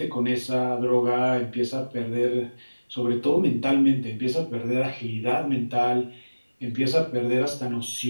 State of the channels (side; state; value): both; inverted; correlation -1.00